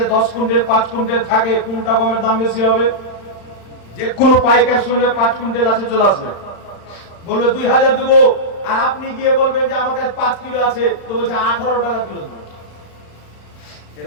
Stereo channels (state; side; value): late; right; 35 ms